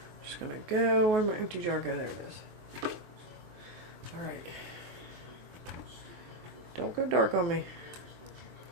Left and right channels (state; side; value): late; left; 23 ms